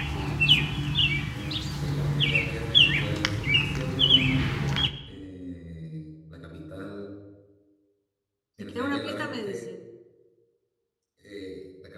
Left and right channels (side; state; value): both; identical; correlation 1.00